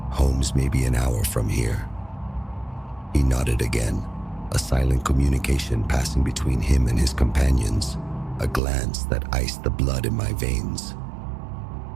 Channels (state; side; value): drops out; left; at 8.6 s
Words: Home's maybe an hour from here. He nodded again, a silent communication passing between him and his companions, a glance that iced the blood in my veins.